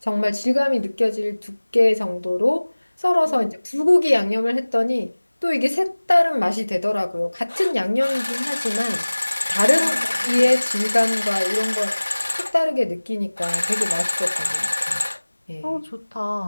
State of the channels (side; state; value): both; inverted; correlation -1.00